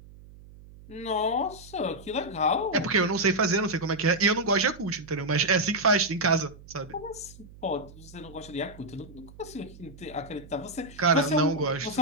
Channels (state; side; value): noise; right; hum, 20 dB below the sound